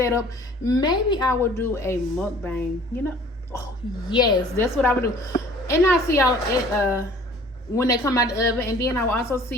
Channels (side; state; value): both; normal; correlation 0.51